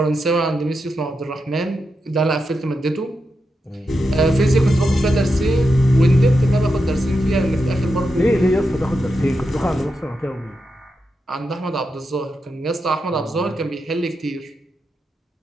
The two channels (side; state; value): both; normal; correlation 0.87